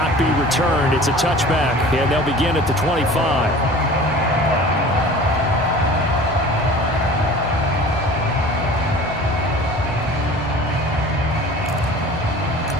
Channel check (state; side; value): normal; both; correlation 0.42